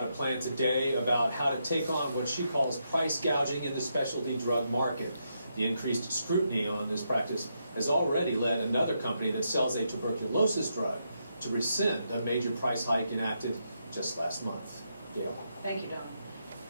a plan today about how to take on what she calls price gouging in the specialty drug market. The increased scrutiny on this practice has already led another company that sells a tuberculosis drug to rescind a major price hike enacted just last month. Gail. Thank you, Don.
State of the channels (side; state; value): both; inverted; correlation -0.81